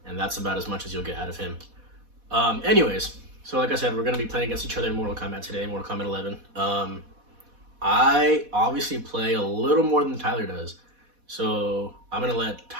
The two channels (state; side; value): late; left; 4.1 ms